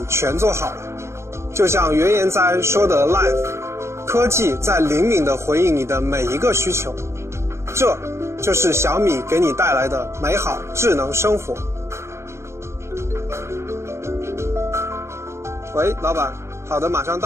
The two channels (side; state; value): left; late; 0.13 ms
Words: 全做好了。就像原研哉说的 Live， 科技在灵敏地回应你的每一个需求。这就是小米给你带来的美好智能生活。喂，老板，好的，马上